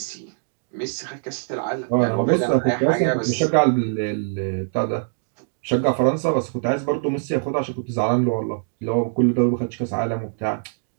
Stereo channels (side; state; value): left; silent; digital silence